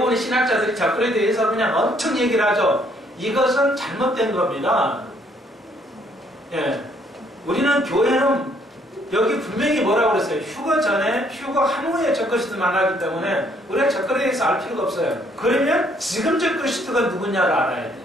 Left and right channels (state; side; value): normal; both; correlation 0.66